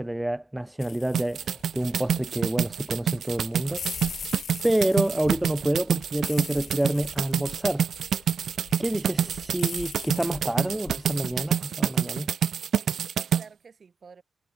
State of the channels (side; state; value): left; quieter; 3.8 dB